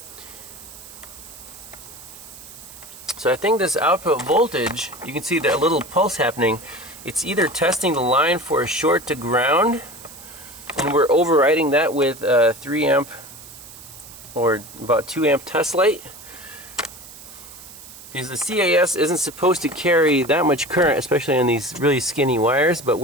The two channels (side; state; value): right; noise; hiss, 17 dB below the sound